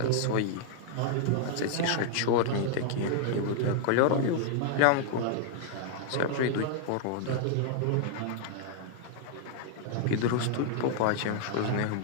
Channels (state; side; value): different; both; correlation 0.00